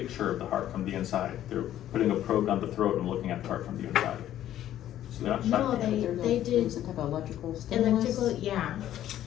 of the heart from the inside. They're putting a probe down the throat and looking at the heart from the inside. So they're not No, shocking. they did Some type of electrical stimulus? electrical, yeah.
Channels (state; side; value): quieter; right; 12.1 dB